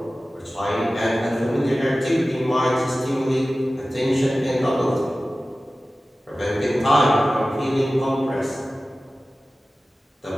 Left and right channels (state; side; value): normal; both; correlation 0.96